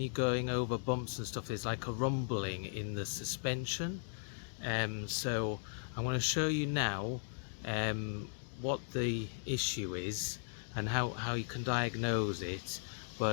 going over bumps and stuff, there's like a rumbling in the suspension. So I'm going to show you now what the issue is and how you can diagnose it.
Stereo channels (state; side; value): silent; right; digital silence